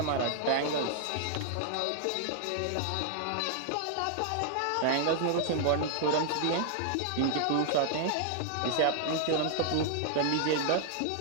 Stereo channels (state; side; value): different; both; correlation 0.00